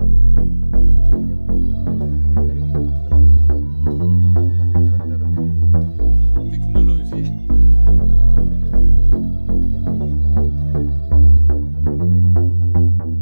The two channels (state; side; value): inverted; both; correlation -1.00